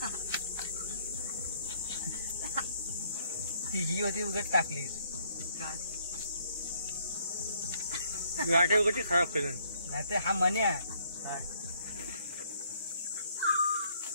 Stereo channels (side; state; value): both; inverted; correlation -0.67